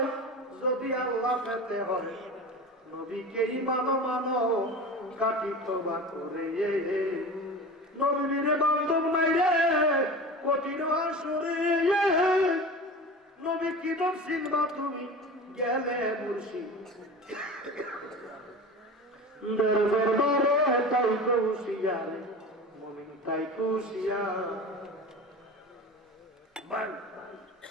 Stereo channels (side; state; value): both; normal; correlation 0.33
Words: যদি আল্লাহ পেতে হয় নবীকে মানো মানো, খাঁটি তওবা করে। নবীর বান্ধব নাই রে কঠিন আসরে, নবী কি নাম চিনবা তুমি গেলে মুর্শিদ দরবারে, তাই হুঁশিয়ারে মুমিন, তাই হুঁশিয়ার।